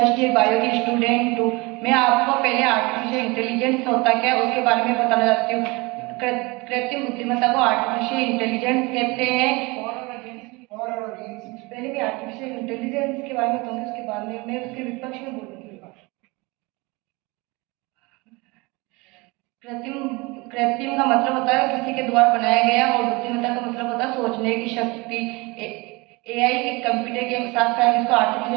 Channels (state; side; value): quieter; left; 25.2 dB